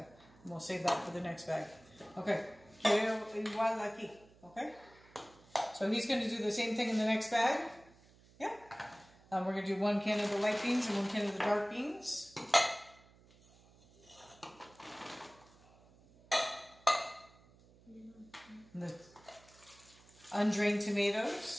And we'll save that for the next bag. Okay. Quiero igual aquí. Okay. So he's going to do the same thing in the next bag. Yeah. We're going to do 1 can of the light beans and 1 can of the dark beans. And the undrained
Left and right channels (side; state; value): right; noise; hum, 26 dB below the sound